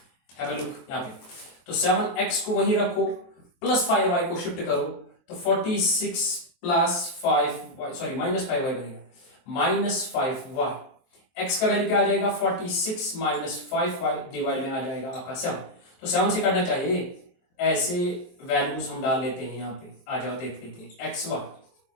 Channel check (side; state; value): right; late; 23 ms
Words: हैव अ लुक यहाँ पे। तो 7x को वहीं रखो, प्लस 5y को शिफ्ट करो, तो 46 प्लस 5y, सॉरी -5y बनेगा, -5y। x का वैल्यू क्या आ जाएगा 46 -5y डिवाइड में आ जाएगा आपका 7। तो 7 से काटना चाहिए, ऐसे वैल्यूज हम डाल लेते हैं यहाँ पे। आ जाओ देख लेते हैं एक्स वाई।